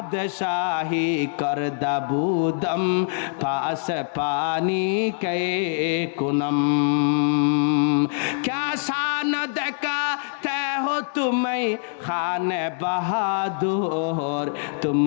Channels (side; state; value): right; silent; digital silence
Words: করদাবুদম পাস পানি কে कुनम क्या शान दिखाते हो तुम्हें खाने बहादुर तुम